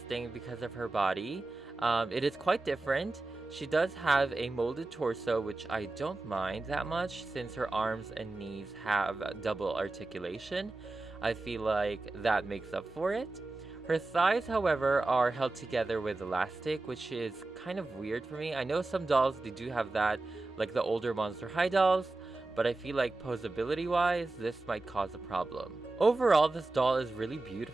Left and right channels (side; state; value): left; quieter; 3.2 dB